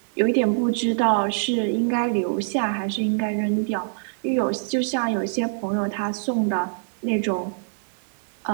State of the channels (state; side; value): silent; left; 56 dB below the other